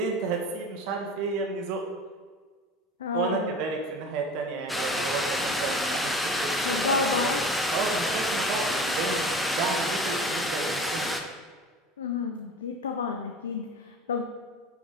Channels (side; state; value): both; normal; correlation 0.37